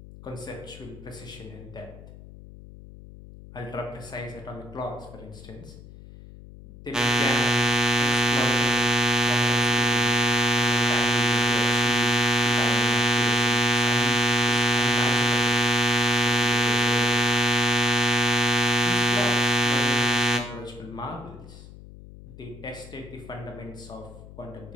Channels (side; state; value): left; noise; hum, 19 dB below the sound